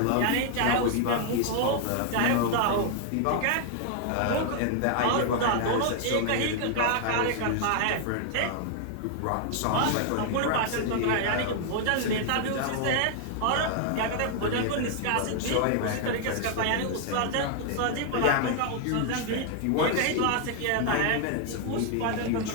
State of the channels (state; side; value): different; both; correlation 0.00